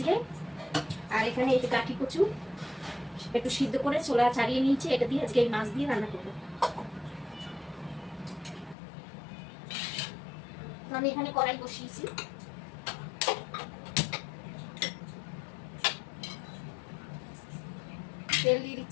আর এখানে এই যে কাঠি কচু একটু সিদ্ধ করে ছোলা ছাড়িয়ে নিয়েছি, এটা দিয়ে আজকে এই মাছ দিয়ে রান্না করবো। আমি এখানে কড়াই বসিয়েছি, তেল দিয়ে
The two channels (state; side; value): drops out; right; at 8.8 s